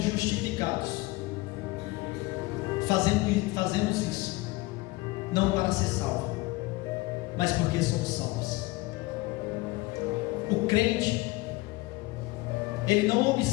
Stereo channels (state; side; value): quieter; right; 21.4 dB